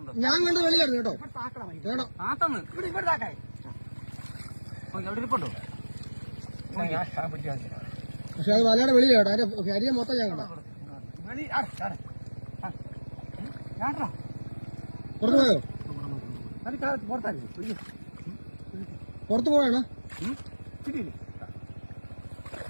ഞാൻ കണ്ടത് വെളിയിലായിരുന്നു കേട്ടോ പക്ഷെ അത് വലയുടെ വെളിയിലാട്ടോ അതിന്റെ ശരീരം മൊത്തം ഞാൻ കണ്ടോ പുറത്തു പോയോ പുറത്തു പോയാണോ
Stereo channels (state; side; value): inverted; both; correlation -1.00